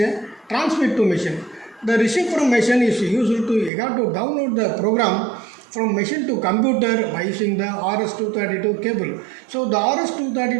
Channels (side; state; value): left; drops out; at 3.7 s